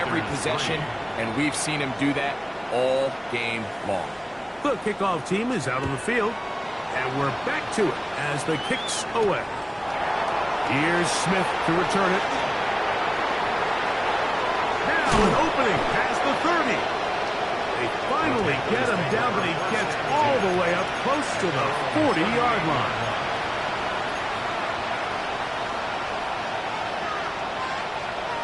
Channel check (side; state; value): both; identical; correlation 1.00